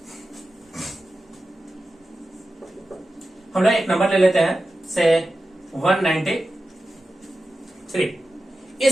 हम लोग एक नंबर ले लेते हैं से 193।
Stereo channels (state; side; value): normal; both; correlation 0.93